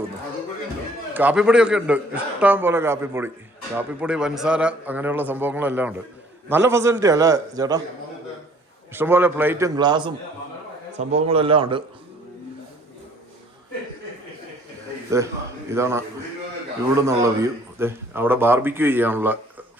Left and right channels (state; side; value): normal; both; correlation 0.57